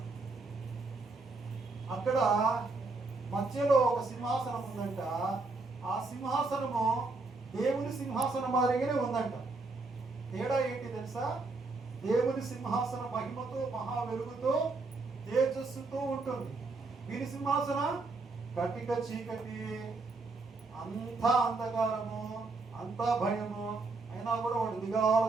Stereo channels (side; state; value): left; quieter; 3.6 dB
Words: అక్కడ మధ్యలో ఒక సింహాసనం ఉందంట. ఆ సింహాసనము దేవుని సింహాసనం మాదిరిగానే ఉందంట. తేడా ఏంటి తెలుసా? దేవుని సింహాసన మహిమతో మహా వెలుగుతో తేజస్సుతో ఉంటుంది. వీరి సింహాసనం కటిక చీకటి, అంతా అంధకారము, అంతా భయము. అయినా కూడా వాడు